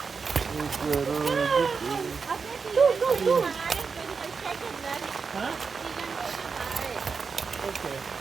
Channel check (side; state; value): left; quieter; 5.2 dB